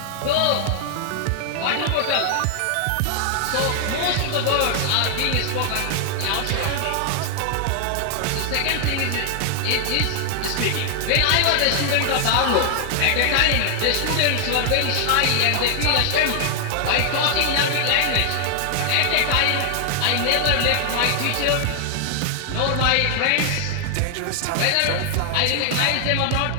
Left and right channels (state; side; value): different; both; correlation 0.00